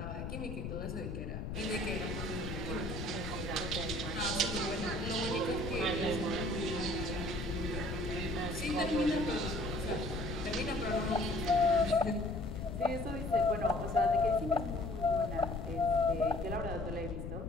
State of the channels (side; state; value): left; noise; rumble, 6 dB below the sound